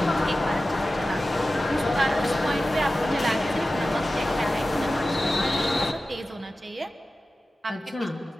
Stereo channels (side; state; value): both; normal; correlation 0.95